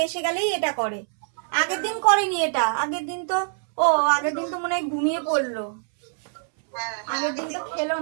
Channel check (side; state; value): left; silent; 62 dB below the other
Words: এসে গেলেই এটা করে। আগের দিন করেনি এটা, আগের দিন তো আগের দিন তো মনে হয় ঘুমিয়ে পড়লো। আগের দিন তো